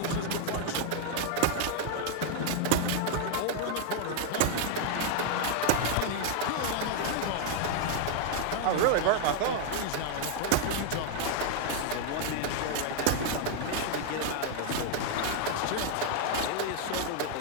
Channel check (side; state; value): both; different; correlation 0.00